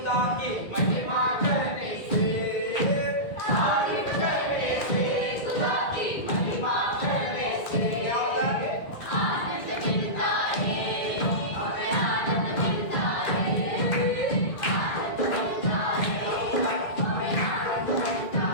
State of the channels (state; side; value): late; right; 2.0 ms